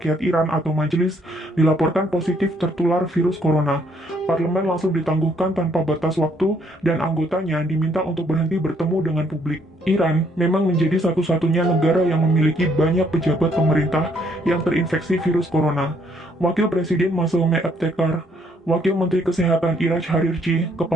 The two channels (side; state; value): both; normal; correlation 0.68